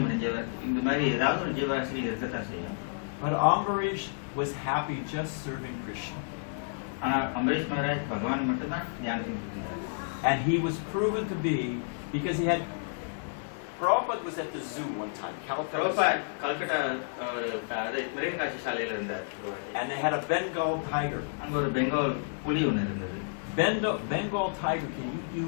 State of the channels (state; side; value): silent; right; digital silence